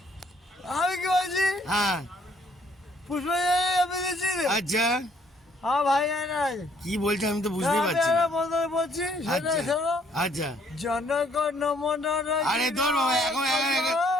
আমি কি বলছি হ্যাঁ পুষ্পাঞ্জলি আমি দিচ্ছি রে। আচ্ছা হ্যাঁ ভাই নাই কি বলছো আমি তো বুঝতেই পারছি না। মন্ত্র বলছি সেটা আচ্ছা শোনো। আচ্ছা জনগণ মনে রাখি আরে তোর বাবা,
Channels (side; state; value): both; normal; correlation 0.65